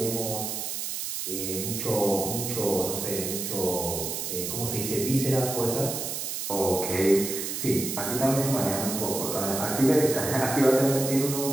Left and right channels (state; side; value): noise; right; hiss, 4 dB below the sound